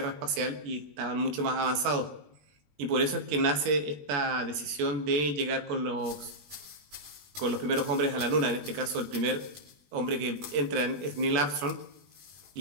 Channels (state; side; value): late; left; 20 ms